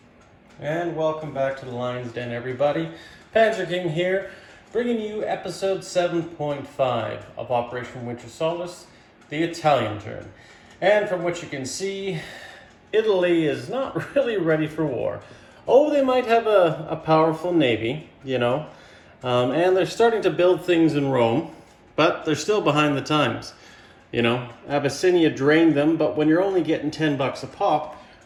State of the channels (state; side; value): identical; both; correlation 1.00